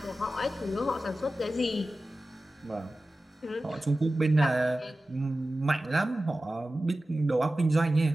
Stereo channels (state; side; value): normal; both; correlation 0.95